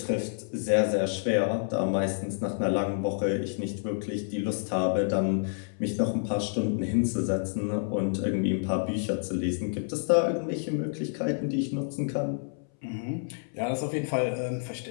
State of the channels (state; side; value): silent; right; 59 dB below the other